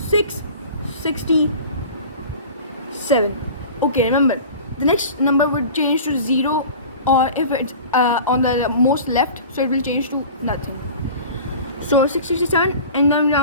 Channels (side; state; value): both; inverted; correlation -0.39